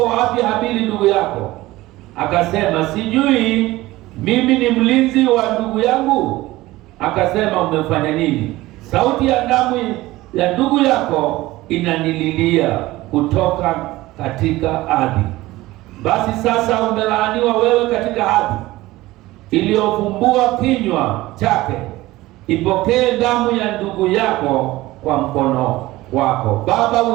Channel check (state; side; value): quieter; left; 18.2 dB